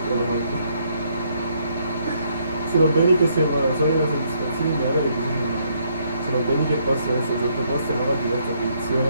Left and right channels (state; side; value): inverted; both; correlation -0.71